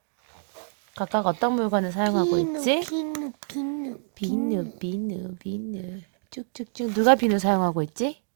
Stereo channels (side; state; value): left; silent; digital silence